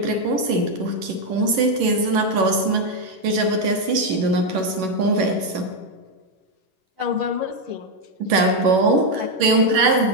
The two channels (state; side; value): late; left; 11 ms